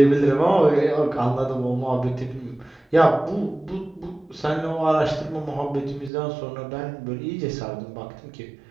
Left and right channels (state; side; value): drops out; left; at 6.1 s